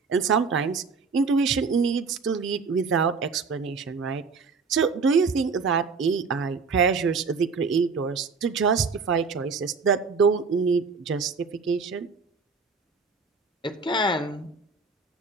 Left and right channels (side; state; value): left; quieter; 4.8 dB